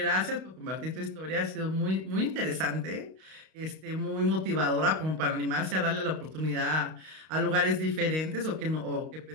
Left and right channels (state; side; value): late; left; 32 ms